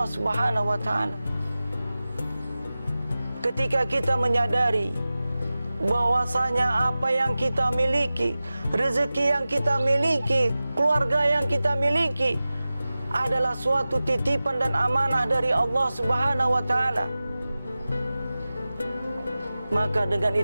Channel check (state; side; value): inverted; both; correlation -0.96